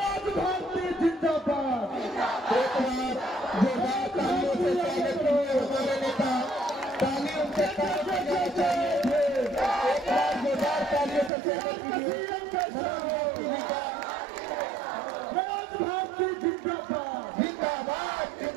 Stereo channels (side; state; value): left; drops out; at 11.3 s